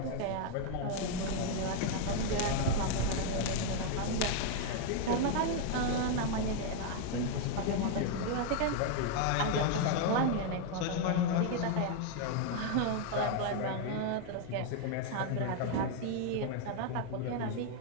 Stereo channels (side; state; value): both; different; correlation 0.00